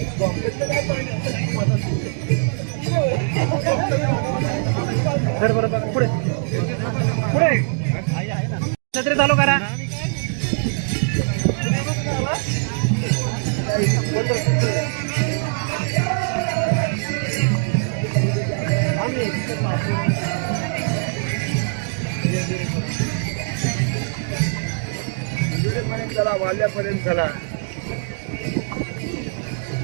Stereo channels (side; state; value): left; silent; digital silence